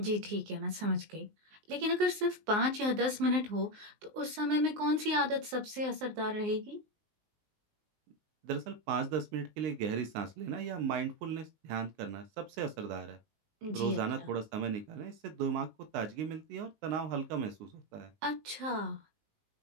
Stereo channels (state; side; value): late; left; 19 ms